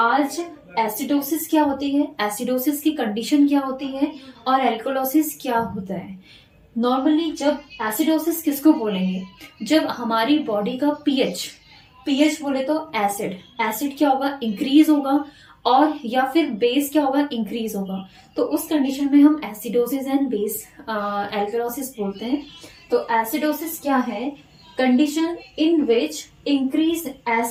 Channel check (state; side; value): identical; both; correlation 1.00